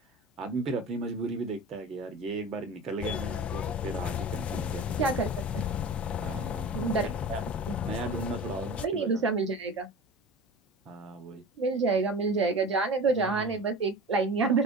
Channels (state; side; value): normal; both; correlation 0.34